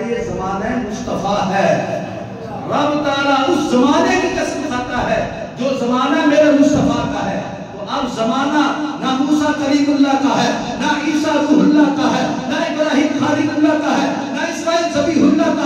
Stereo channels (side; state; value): both; identical; correlation 1.00